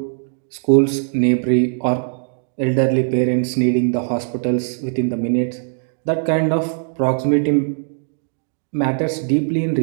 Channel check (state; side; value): silent; left; digital silence